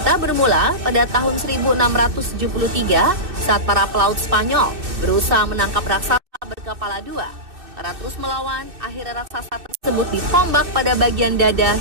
bermula pada tahun 1673 saat para pelaut Spanyol berusaha menangkap raksasa berkepala 2. Karena terus melawan, akhirnya raksasa tersebut ditombak pada bagian dada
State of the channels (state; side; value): late; left; 2.6 ms